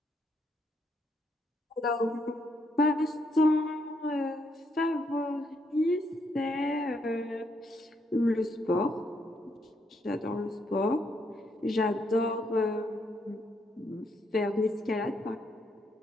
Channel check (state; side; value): normal; both; correlation 0.75